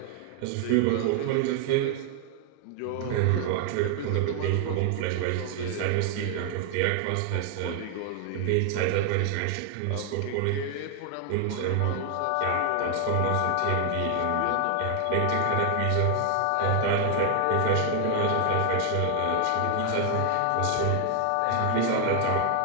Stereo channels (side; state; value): both; different; correlation 0.00